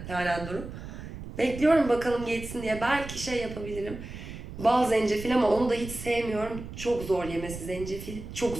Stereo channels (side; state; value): right; noise; rumble, 11 dB below the sound